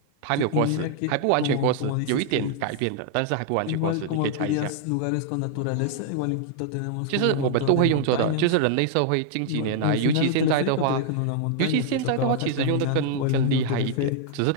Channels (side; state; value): both; different; correlation -0.01